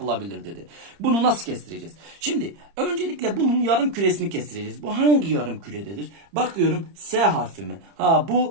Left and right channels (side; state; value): left; late; 30 ms